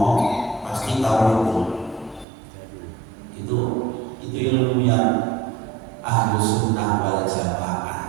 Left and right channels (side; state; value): left; drops out; at 2.2 s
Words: pasti tahu itu ilmu yang ahlu sunnah wal